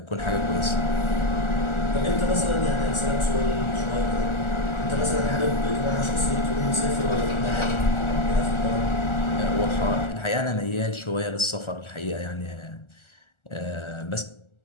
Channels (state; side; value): late; right; 1.4 ms